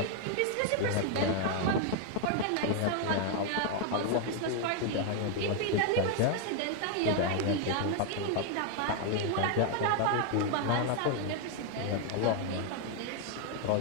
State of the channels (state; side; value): different; both; correlation 0.00